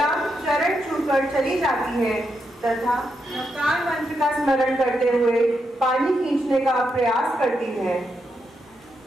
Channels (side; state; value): both; normal; correlation 0.82